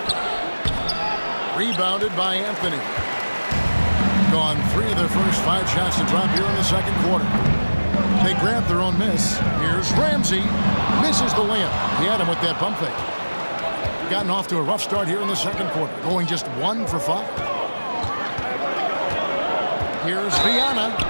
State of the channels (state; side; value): inverted; both; correlation -1.00